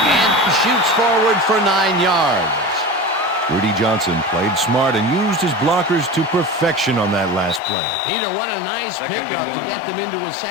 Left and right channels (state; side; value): drops out; right; at 7.6 s